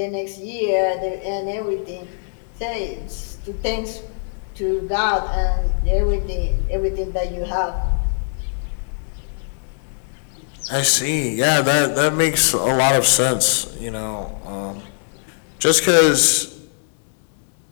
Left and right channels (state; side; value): silent; right; digital silence